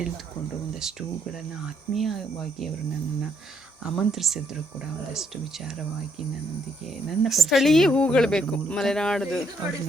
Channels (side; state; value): both; normal; correlation 0.71